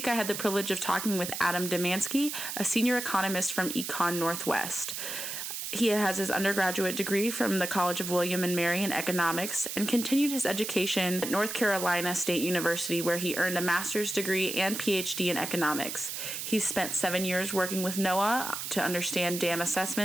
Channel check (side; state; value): right; noise; hiss, 5 dB below the sound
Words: I had the privilege of talking with Adam Domanski, a senior economist from ECONorthwest. He has his undergraduate degree from the College of William and Mary in economics and continued his education at North Carolina State University, where he earned a master's degree and PhD in economics. He's spent 7 years working with NOAA to understand dam